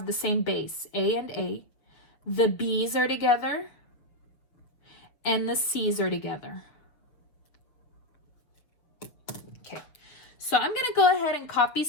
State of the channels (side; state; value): right; late; 7.0 ms